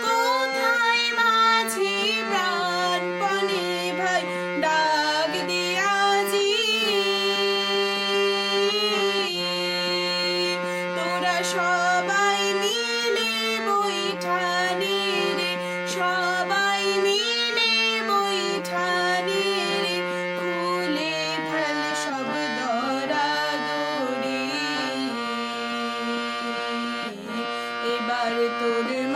কোথায় মাঝি প্রাণপণে ভাই ডাক দিয়াজি। তোরা সবাই মিলে বৈঠানি রে, সবাই মিলে বৈঠানি রে, খুলে ফেল সব দরাদরি। এবার তোর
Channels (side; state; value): both; identical; correlation 1.00